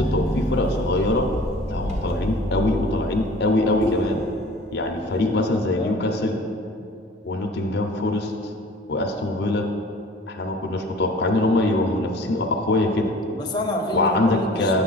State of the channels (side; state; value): both; normal; correlation 0.46